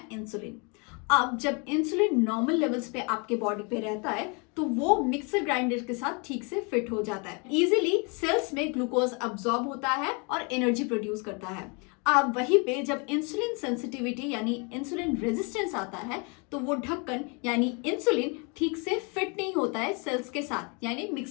इंसुलिन. अब जब इंसुलिन नॉर्मल लेवल्स पे आपके बॉडी पे रहता है तो वो मिक्सर ग्राइंडर के साथ ठीक से फिट हो जाता है. इजीली सेल्स में ग्लूकोज अब्सॉर्ब होता है और एनर्जी प्रोड्यूस करता है. अब वहीं पे जब इंसुलिन सेंसिटिविटी यानी इंसुलिन रेजिस्टेंस आता है तो वो ढक्कन यानी इंसुलिन ठीक से फिट नहीं होता है सेल्स के साथ यानी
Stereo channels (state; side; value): quieter; right; 33.0 dB